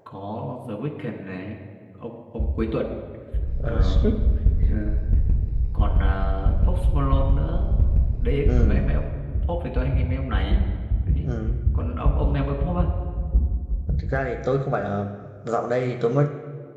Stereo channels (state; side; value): identical; both; correlation 1.00